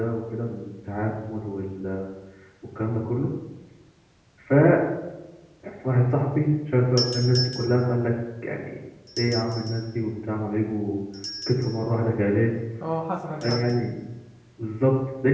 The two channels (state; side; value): identical; both; correlation 1.00